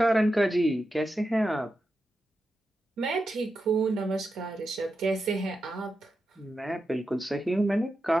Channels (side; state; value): both; normal; correlation 0.89